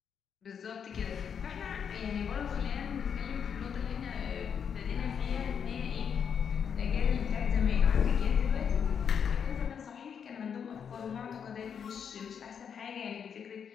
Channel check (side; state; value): right; quieter; 7.4 dB